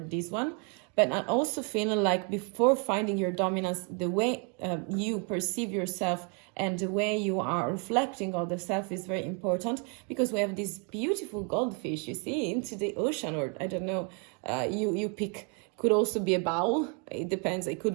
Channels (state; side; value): quieter; left; 37.2 dB